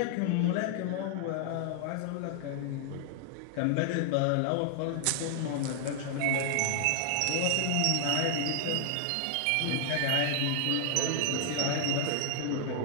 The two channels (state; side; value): different; both; correlation 0.00